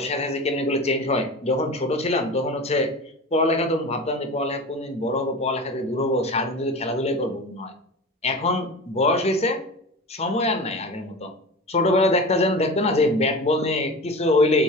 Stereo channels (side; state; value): both; normal; correlation 0.32